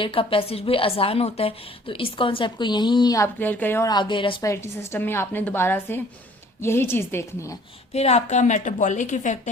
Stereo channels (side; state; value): both; normal; correlation 0.55